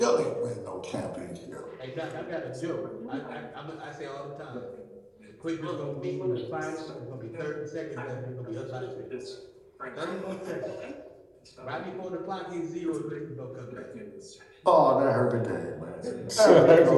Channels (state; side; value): identical; both; correlation 1.00